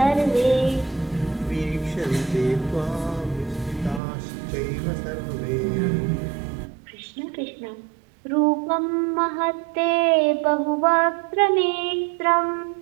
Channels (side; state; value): left; drops out; at 4.0 s